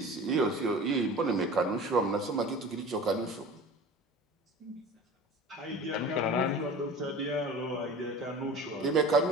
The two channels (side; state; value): both; normal; correlation 0.38